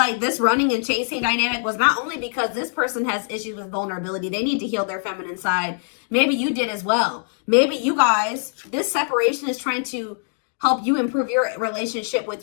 this running and chasing dynamic was not only because this person has issues with vulnerability. They need to heal their feminine side. Maybe you did as well. Maybe you guys, this separation is trying to help you improve your relationship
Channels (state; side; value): silent; right; digital silence